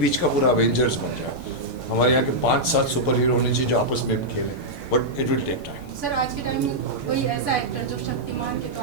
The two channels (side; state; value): both; normal; correlation -0.07